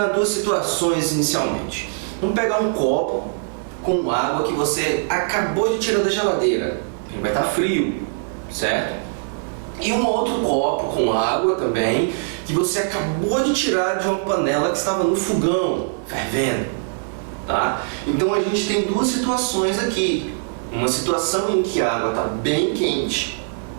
duas situações inicialmente. Vamos pegar um copo com água que você acabou de tirar da geladeira, ele vai estar frio, certo? E um outro copo com água também, que você acabou de tirar de uma panela que estava no fogão, fervendo, tá? Então a gente tem duas situações aqui. Uma situação em que a água está bem quente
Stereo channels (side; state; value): left; silent; 64 dB below the other